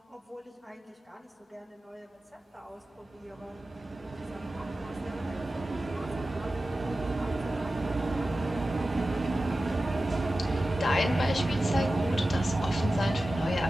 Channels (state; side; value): normal; both; correlation 0.94